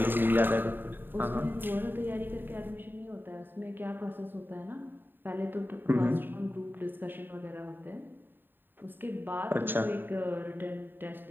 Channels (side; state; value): left; late; 0.095 ms